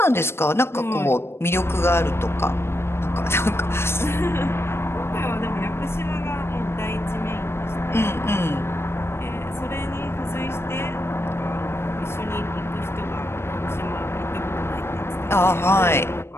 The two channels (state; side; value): late; right; 0.12 ms